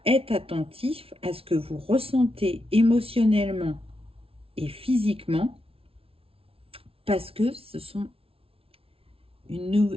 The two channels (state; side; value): late; left; 0.27 ms